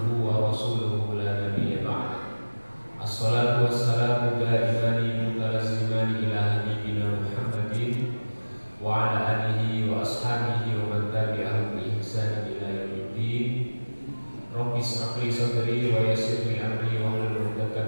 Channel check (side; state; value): both; inverted; correlation -1.00